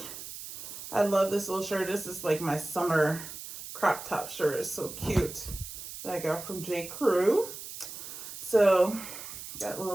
I love this little shirt. This is like my summer crop top shirt. It's so cute. That I got from J. Crew. So, got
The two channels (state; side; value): noise; right; hiss, 11 dB below the sound